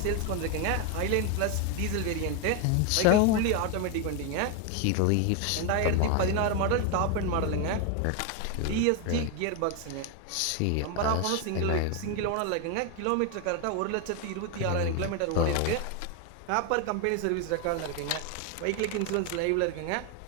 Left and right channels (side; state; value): both; different; correlation 0.01